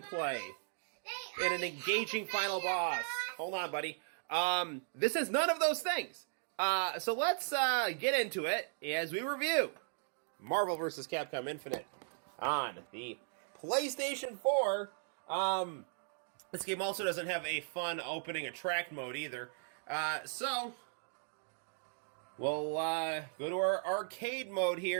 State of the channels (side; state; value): left; silent; digital silence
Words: and an engaging final boss. Hold on, buddy. This has none of those things. So let's get into it as we review Marvel vs. Capcom Infinite on the PlayStation 4. This game also doesn't have a fun opening attract mode either. So we'll go to our arcade mode